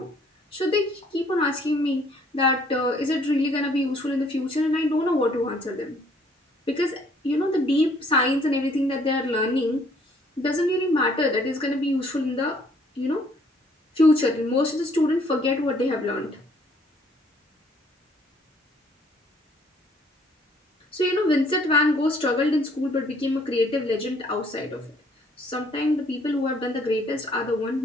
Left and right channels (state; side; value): normal; both; correlation 0.62